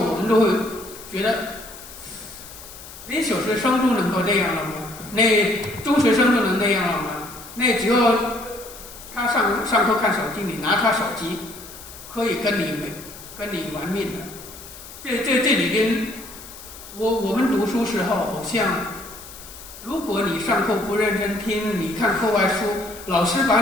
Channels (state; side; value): noise; left; hiss, 16 dB below the sound